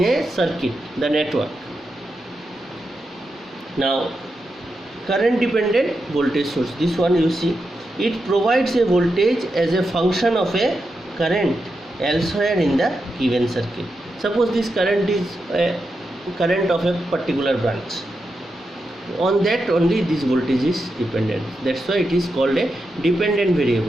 a circuit, the network. Now current dependent voltage source, this one you see, it provides a voltage as a function of a current elsewhere in the given circuit. Suppose this current is a current of a particular branch, on that only this voltage is dependent. That's why it is called a dependent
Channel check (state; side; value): normal; both; correlation 0.87